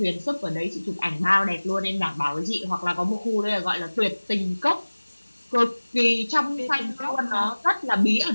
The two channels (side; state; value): both; inverted; correlation -1.00